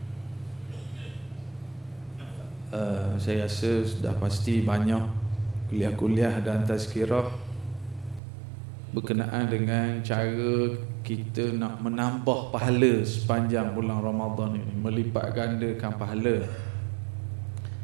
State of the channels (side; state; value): left; drops out; at 8.2 s